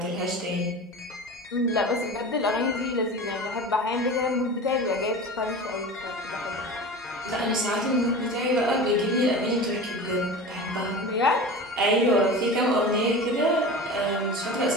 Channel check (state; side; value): normal; both; correlation 0.33